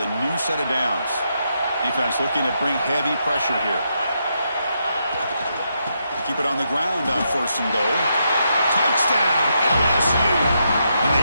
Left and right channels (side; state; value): both; inverted; correlation -0.81